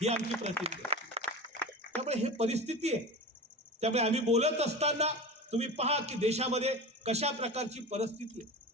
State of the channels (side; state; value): both; normal; correlation 0.30